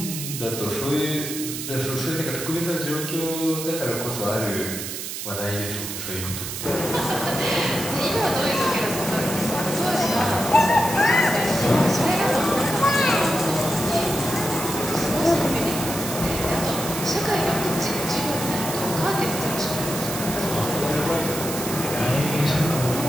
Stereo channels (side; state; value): right; noise; hiss, 6 dB below the sound